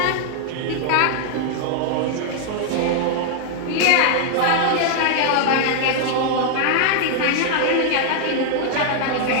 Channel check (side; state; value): both; different; correlation 0.00